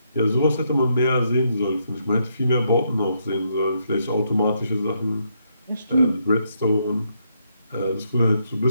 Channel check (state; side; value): inverted; both; correlation -0.76